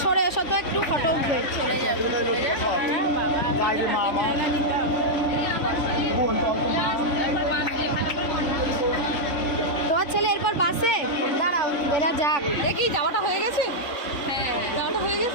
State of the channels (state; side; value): late; right; 3.5 ms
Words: সরে এসো তো, একটু ফটো উঠবে। তোমার ছেলে এরপর বাসে দাঁড়াও, এরা যাক। দেখি যাওয়াটা হয়ে গেছে। হ্যাঁ, যাওয়াটা হয়ে